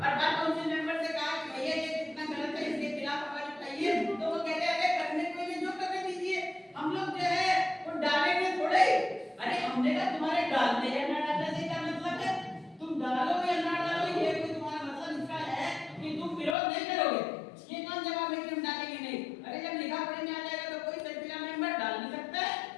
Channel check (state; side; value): drops out; right; at 16.6 s